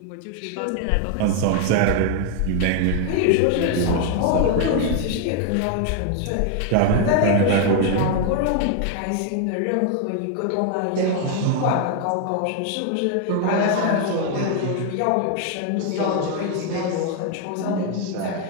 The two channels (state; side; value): different; both; correlation 0.00